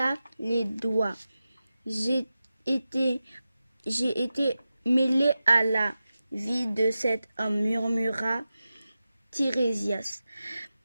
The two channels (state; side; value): inverted; both; correlation -0.93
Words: les doigts. J'ai été mêlé à la vie de cet homme, murmura Tirésias.